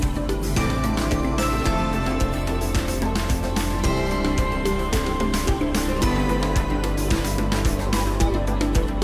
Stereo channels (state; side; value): identical; both; correlation 1.00